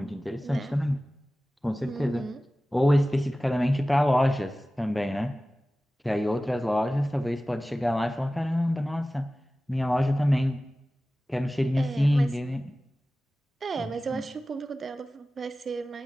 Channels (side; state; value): both; normal; correlation 0.97